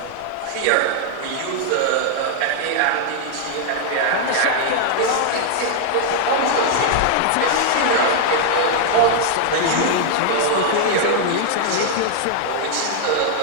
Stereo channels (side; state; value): both; different; correlation 0.00